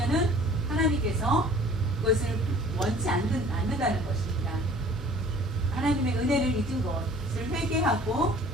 하나님께서 그것을 원치 않는다는 것입니다. 하나님의 은혜를 잊은 것을 회개하고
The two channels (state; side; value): normal; both; correlation 0.50